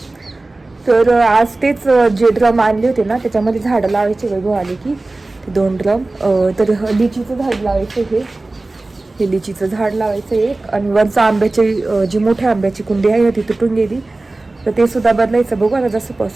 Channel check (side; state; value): left; quieter; 3.1 dB